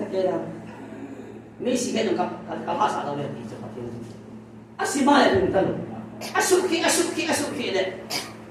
ta kera mi si ke ka hasa da le ti cha patin asima ya dun tan asuki le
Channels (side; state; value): both; identical; correlation 1.00